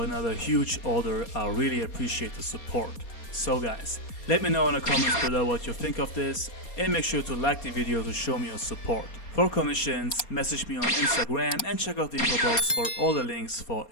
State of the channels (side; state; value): right; late; 4.3 ms